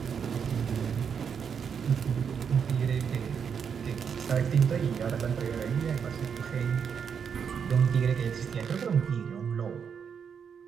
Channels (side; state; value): left; quieter; 7.0 dB